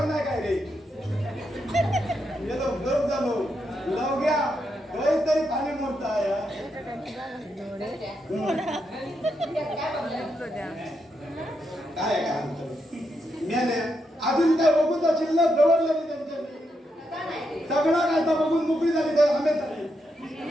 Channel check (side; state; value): both; normal; correlation 0.82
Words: नाही काय रे. गेलो गरम झालो लवग्या काहीतरी खाली मोडता या काय काय मेले अजून काय बघून तर शिल्लक दवडलं नाही त्यांच्या सगळं काय तर बघून मोकळी झाली तर आंबे झाले.